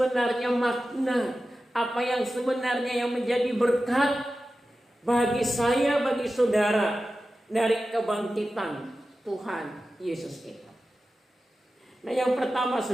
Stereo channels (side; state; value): both; normal; correlation 0.94